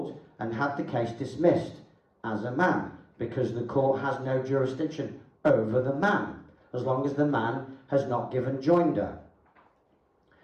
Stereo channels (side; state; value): both; identical; correlation 1.00